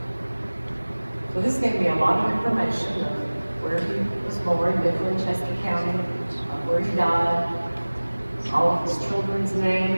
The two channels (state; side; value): inverted; both; correlation -1.00